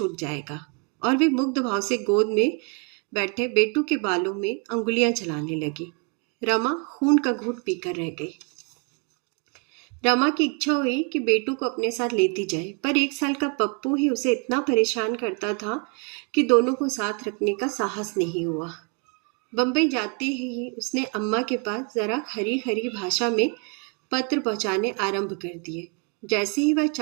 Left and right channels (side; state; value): left; quieter; 34.8 dB